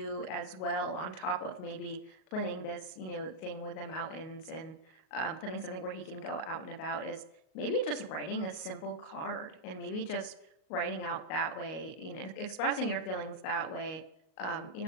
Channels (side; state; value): right; late; 38 ms